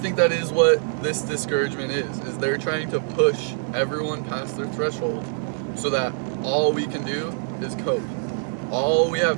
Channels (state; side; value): silent; left; digital silence